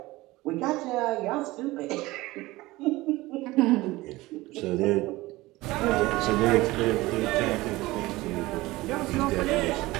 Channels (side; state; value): left; quieter; 19.6 dB